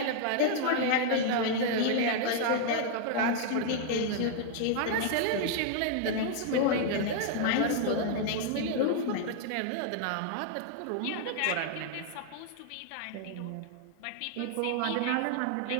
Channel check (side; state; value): both; different; correlation 0.00